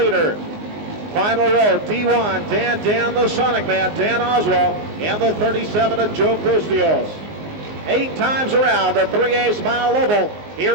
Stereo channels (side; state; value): left; late; 19 ms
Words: Final row, D1, Dan the Sonic Man, Dan Oswald, and the 37 of Joe Bustios. 8 times around the 3/8 mile oval